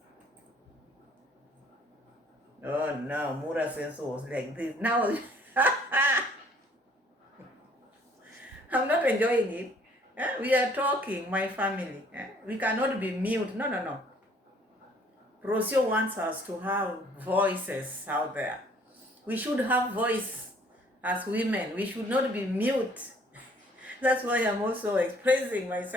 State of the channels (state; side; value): normal; both; correlation 0.59